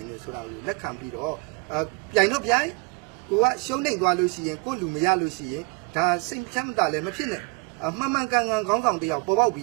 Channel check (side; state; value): left; quieter; 28.9 dB